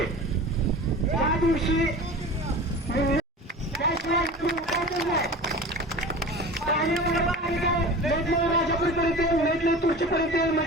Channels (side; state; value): both; normal; correlation 0.35